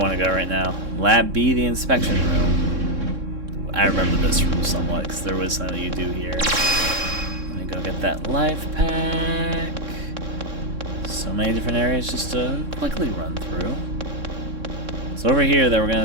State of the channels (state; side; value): late; left; 3.6 ms